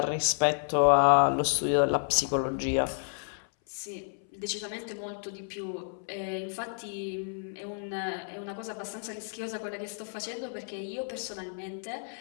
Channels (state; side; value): silent; right; 57 dB below the other